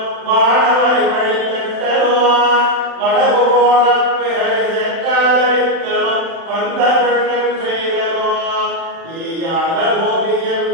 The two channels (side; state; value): left; late; 35 ms